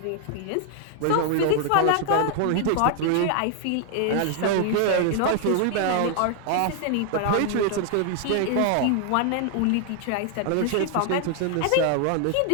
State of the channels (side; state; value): both; different; correlation 0.00